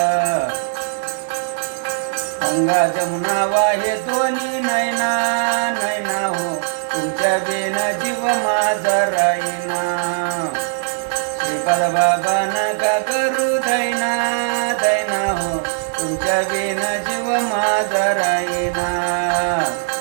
गंगा जमुना वाहे दोन्ही नैना नैना हो, तुमच्या बिना जीव माझा राहीना. श्रीपाद बाबा नका करू दैना दैना हो, तुमच्या बिना जीव माझा राहीना.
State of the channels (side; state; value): left; silent; 62 dB below the other